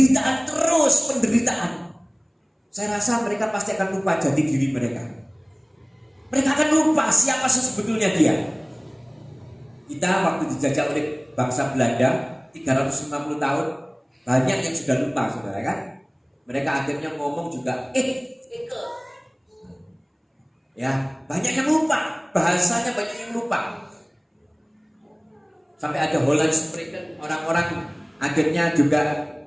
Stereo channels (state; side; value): identical; both; correlation 1.00